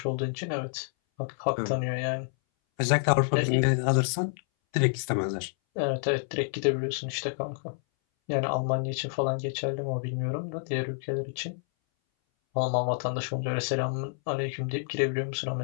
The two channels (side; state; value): right; silent; 59 dB below the other